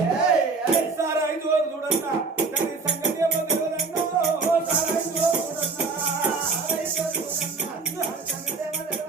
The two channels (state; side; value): quieter; left; 4.3 dB